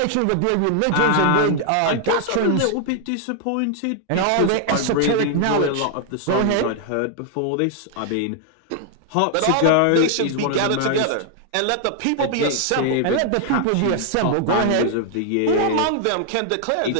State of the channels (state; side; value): different; both; correlation 0.00